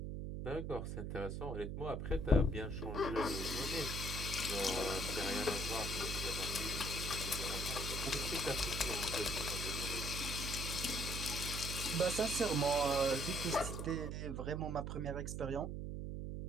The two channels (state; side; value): noise; right; hum, 4 dB below the sound